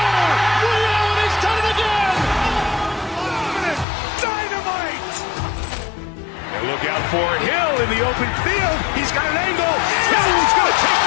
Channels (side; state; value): right; drops out; at 3.9 s